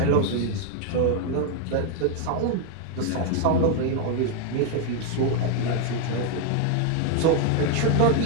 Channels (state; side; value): different; both; correlation 0.01